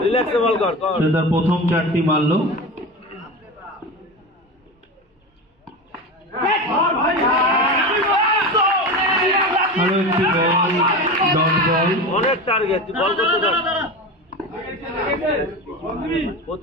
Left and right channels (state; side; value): normal; both; correlation 0.26